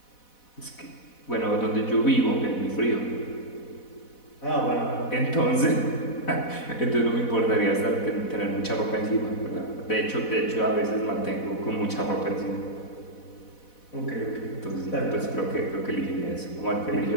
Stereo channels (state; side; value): late; right; 4.1 ms